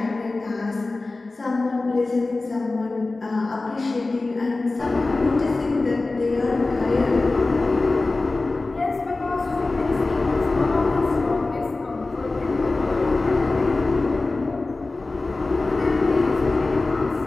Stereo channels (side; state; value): right; quieter; 3.3 dB